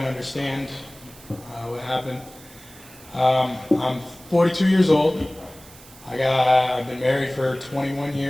of understand what happened. I'm 42 years old. I've been married for 21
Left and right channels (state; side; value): noise; right; hiss, 21 dB below the sound